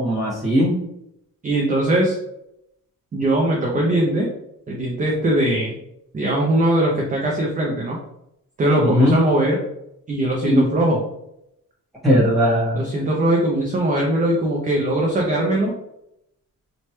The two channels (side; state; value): both; normal; correlation 0.51